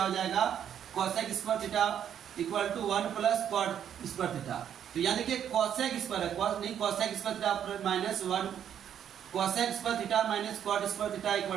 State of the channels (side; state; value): left; quieter; 9.3 dB